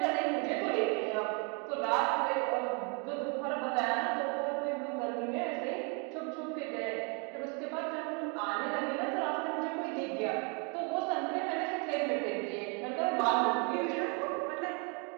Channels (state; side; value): quieter; left; 34.7 dB